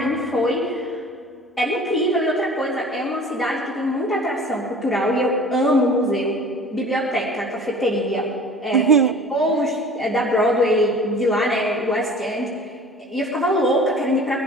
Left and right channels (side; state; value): both; normal; correlation 0.44